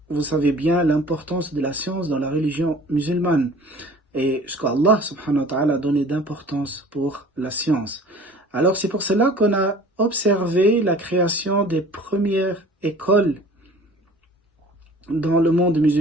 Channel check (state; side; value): normal; both; correlation 0.47